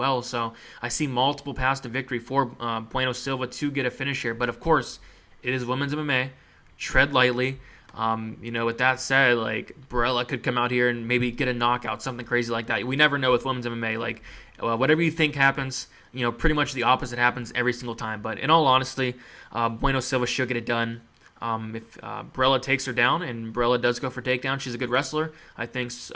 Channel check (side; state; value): both; identical; correlation 1.00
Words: So I see multiple paths to victory for Bueno Silva to get a finish here. But, of course, it is women's MMA. Tread lightly. With that said, Barela could come out here and maybe get a knockout, something crazy like that. We never know with women's MMA. Whatever you think happens, pretty much the opposite happens every single time. But in all honesty, Bueno Silva should get it done. If Barela takes her down, and Barela does go for takedown, she's a good wrestler. I think